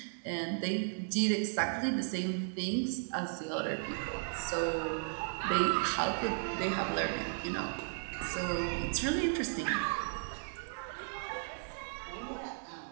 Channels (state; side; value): silent; left; 54 dB below the other